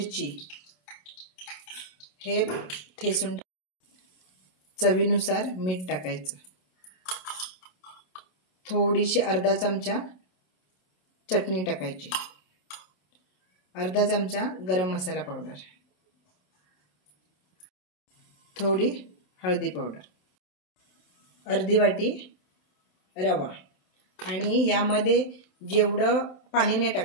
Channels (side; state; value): right; late; 27 ms